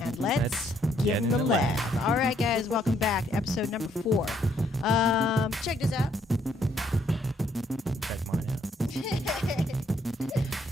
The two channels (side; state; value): both; normal; correlation 0.70